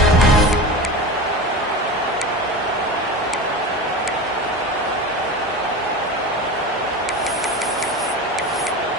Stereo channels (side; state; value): both; normal; correlation 0.28